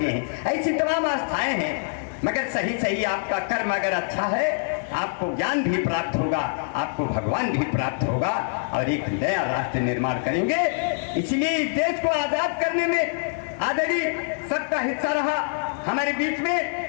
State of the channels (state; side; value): silent; right; digital silence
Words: हैं, ऐसी तमाम आस्थाएं हैं। मगर सही सही आपका कर्म अगर अच्छा है, आपको ज्ञान भी प्राप्त होगा, आपको भगवान भी प्राप्त होगा और एक नया राष्ट्र निर्माण करेंगे। इसलिए इस देश को आजाद करने में आदरणीय सबका हिस्सा रहा। हमारे बीच में